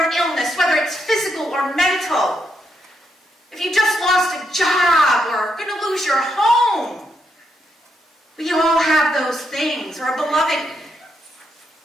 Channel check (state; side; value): normal; both; correlation 0.80